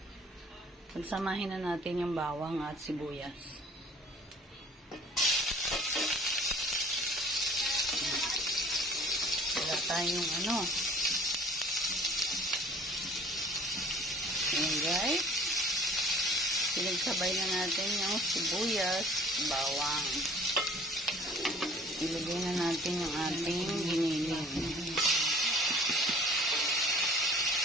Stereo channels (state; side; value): normal; both; correlation 0.51